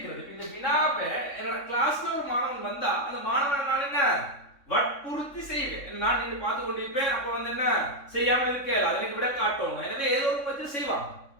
இந்த வினாவை என்னோட கிளாஸ்ல ஒரு மாணவன் வந்தா அந்த மாணவனை நான் என்ன வற்புறுத்தி செய்வேன். நான் நின்று பார்த்து கொண்டிருப்பேன். அப்ப வந்து என்ன செய்யாம இருக்கேன் அதை எனக்கு விட காட்டுவாங்க. எனவே ஏதோ ஒரு பத்தி செய்வாங்க.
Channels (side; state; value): right; late; 3.6 ms